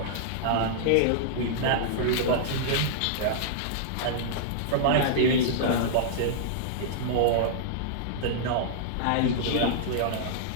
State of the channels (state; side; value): different; both; correlation -0.02